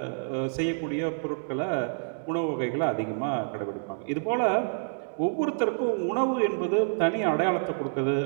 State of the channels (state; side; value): silent; left; digital silence